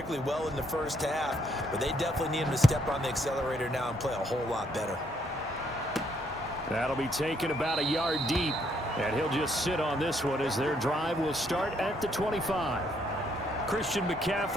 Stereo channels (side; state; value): both; normal; correlation 0.71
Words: well in the first half, but they definitely need him to step on the accelerator now and play a whole lot better. That'll be taken about a yard deep, and he'll just sit on this one as their drive will start at the 25. Christian